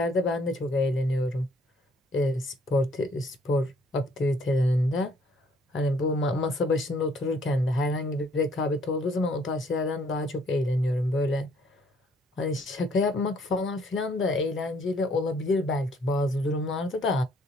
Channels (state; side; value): normal; both; correlation 0.63